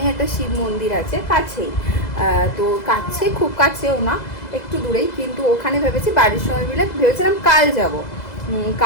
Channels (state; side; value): late; right; 2.0 ms